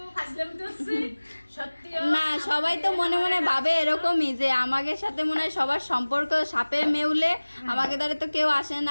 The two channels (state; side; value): inverted; both; correlation -1.00